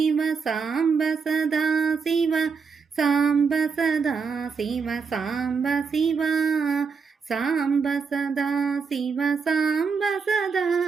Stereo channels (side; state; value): left; quieter; 5.4 dB